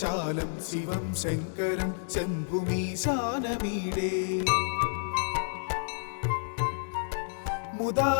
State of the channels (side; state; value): right; silent; digital silence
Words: शिवं शङ्करं शम्भुमीशानमीडे